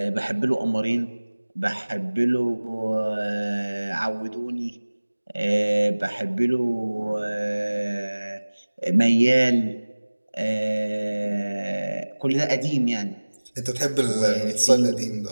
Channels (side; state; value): both; inverted; correlation -1.00